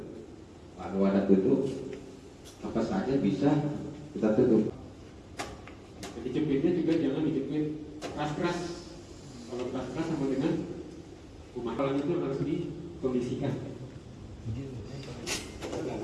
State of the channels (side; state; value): both; identical; correlation 1.00